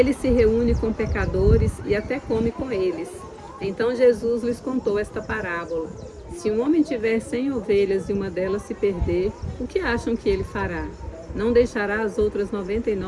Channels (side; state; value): both; identical; correlation 1.00